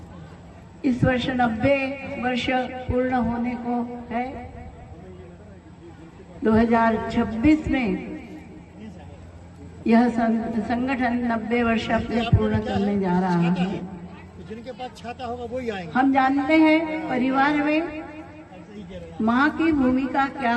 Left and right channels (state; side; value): identical; both; correlation 1.00